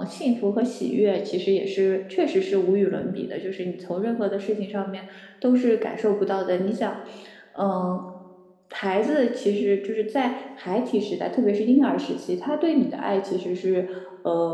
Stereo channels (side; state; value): both; identical; correlation 1.00